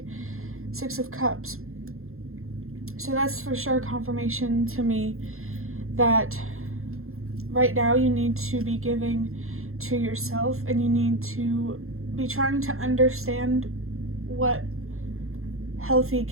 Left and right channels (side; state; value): left; late; 0.62 ms